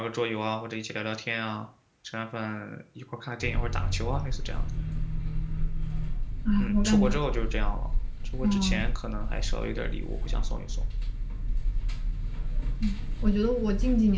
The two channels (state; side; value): identical; both; correlation 1.00